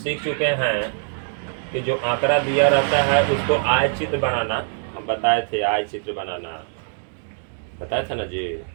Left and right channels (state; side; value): silent; left; 64 dB below the other